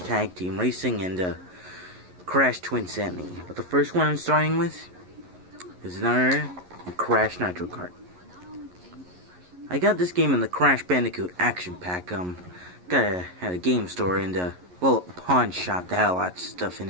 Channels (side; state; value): left; late; 11 ms